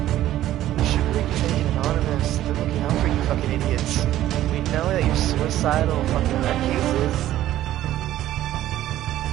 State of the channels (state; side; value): quieter; left; 13.5 dB